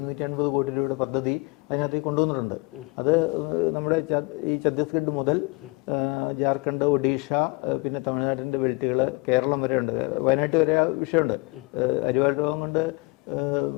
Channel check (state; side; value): quieter; right; 27.1 dB